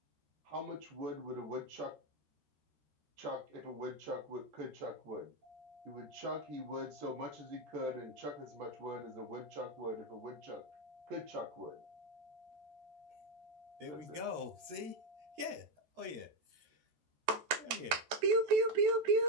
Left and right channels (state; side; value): late; left; 14 ms